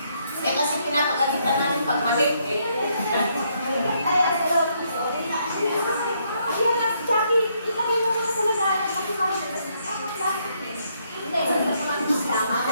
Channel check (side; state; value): both; inverted; correlation -0.73